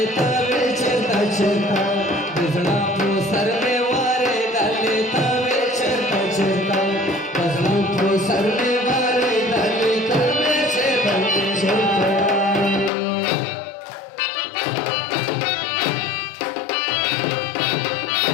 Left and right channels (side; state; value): right; drops out; at 12.9 s